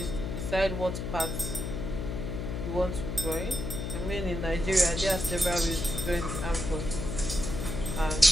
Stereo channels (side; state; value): left; noise; hum, 4 dB below the sound